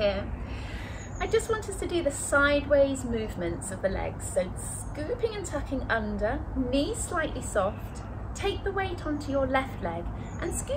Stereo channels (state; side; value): identical; both; correlation 1.00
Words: I just want us to do the sideways movements of the legs. So scooping and tucking under, knees slightly soft, take the weight onto your left leg and